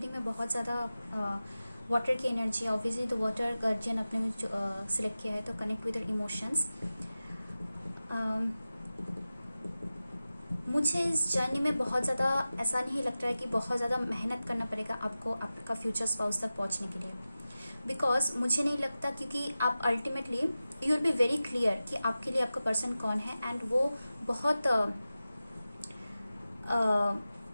में बहुत ज़्यादा वाटर की एनर्जी है. ऑब्वियसली तो वाटर गार्जियन आपने सिलेक्ट किया है, तो कनेक्ट विद इमोशंस. मुझे इस जर्नी में बहुत ज़्यादा ऐसा नहीं लगता है कि बहुत ज़्यादा मेहनत करना पड़ेगा आपको आपका फ्यूचर स्पाउस तक पहुंचने के लिए. बिकॉज मुझे नहीं लगता, क्योंकि आप ultimately you will be very clear कि आपके लिए आपका पर्सन कौन है. एंड वो बहुत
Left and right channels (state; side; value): inverted; both; correlation -0.95